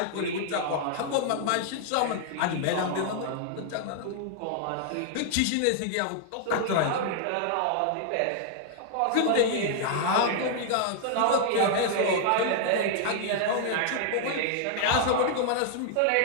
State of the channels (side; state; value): both; different; correlation -0.01